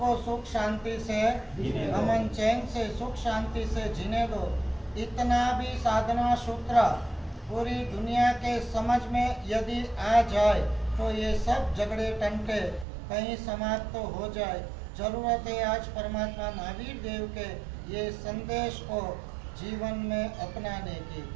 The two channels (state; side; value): drops out; left; at 12.9 s